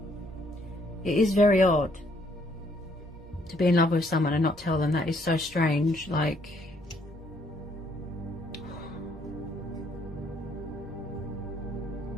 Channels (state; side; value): normal; both; correlation 0.68